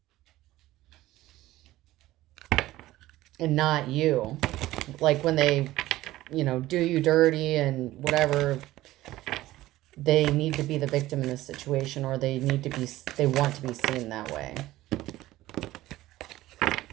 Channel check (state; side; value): quieter; left; 16.2 dB